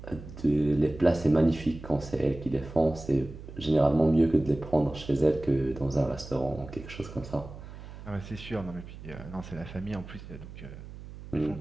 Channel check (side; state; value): right; noise; hum, 14 dB below the sound